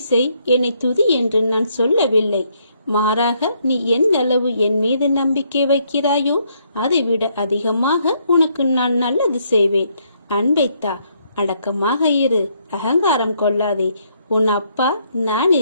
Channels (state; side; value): inverted; both; correlation -0.72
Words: செய், என்னை துதி என்று நான் சொல்லவில்லை. மாறாக நீ எந்த அளவு என் மீது நம்பிக்கை வைக்கிறாயோ அதை விட அதிகமாக உனக்கு நான் நல்லது செய்வேன். அன்பைத்தா. அடக்கமாக இரு. அகங்காரம் கொள்ளாதே. உன் அப்பா நான்